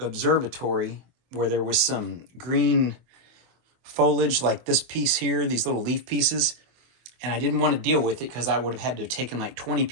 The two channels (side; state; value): left; late; 24 ms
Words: where there was some green foliage like this piece here, these little leaf pieces. And I didn't want to deal with it because I would have had to have taken like 20